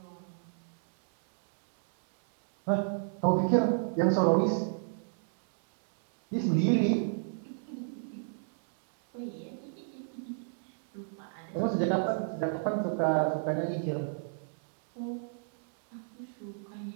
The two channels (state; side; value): silent; left; 57 dB below the other